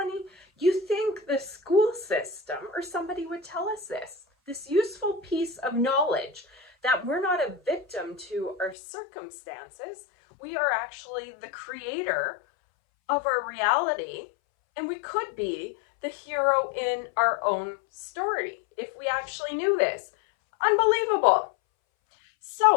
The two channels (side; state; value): right; drops out; at 8.8 s